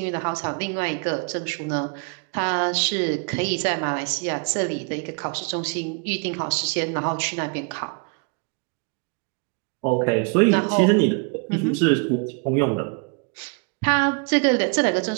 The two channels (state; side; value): quieter; left; 37.7 dB